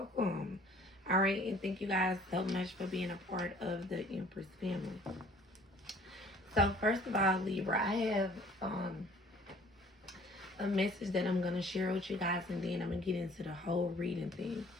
Alright, and thank you guys so much for being a part of the Empress family. So first of all, Libra, I have a message that I'm going to share with you guys, and then I'm going to get into the whole reading thing.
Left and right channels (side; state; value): both; normal; correlation 0.54